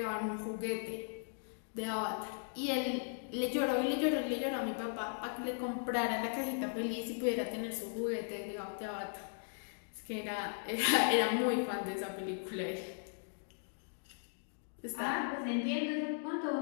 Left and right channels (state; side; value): silent; right; digital silence